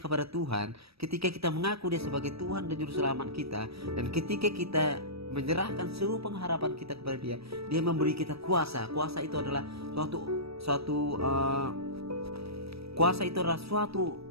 kepada Tuhan, ketika kita mengaku dia sebagai Tuhan dan Juru Selamat kita, dan ketika kita menyerahkan seluruh pengharapan kita kepada dia, dia memberi kita kuasa. Kuasa itu adalah suatu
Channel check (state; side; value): late; left; 0.77 ms